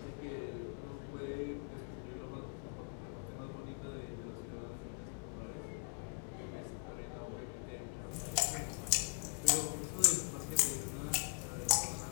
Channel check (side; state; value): right; quieter; 33.9 dB